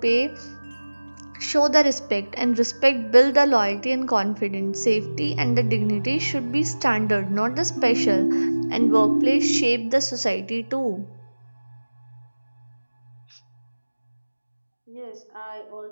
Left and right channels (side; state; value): both; inverted; correlation -1.00